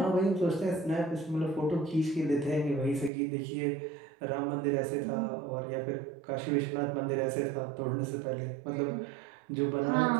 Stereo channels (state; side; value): drops out; left; at 3.1 s